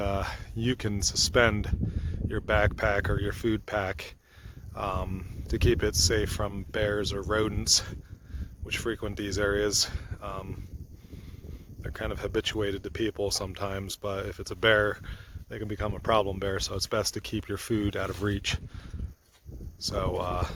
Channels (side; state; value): both; identical; correlation 1.00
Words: you can suspend your backpack or your food pack to keep it safe from bears or rodents which frequent these areas. They're kind of habituated to people sometimes, but if it's a bear, they can become a problem bear, so it's best to keep your food out of reach. So